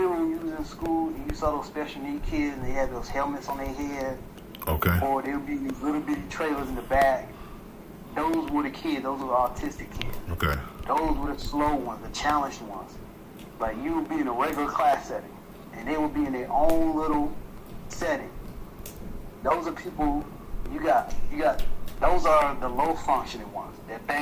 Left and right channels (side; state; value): both; identical; correlation 1.00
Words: when you was in school and you saw those special need kids and they had those helmets on their head? Okay. Or there would be these little bitty trailers in the back. Those were the kids. Those were the autistic kids. Okay. Those were the slow ones, the challenged ones. Like, you would be in a regular class setting, and they would be in their own little setting. Those are people you got. Those are the low functioning ones that